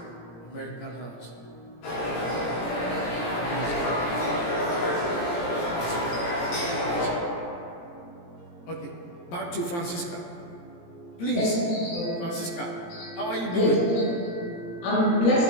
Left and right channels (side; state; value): right; late; 17 ms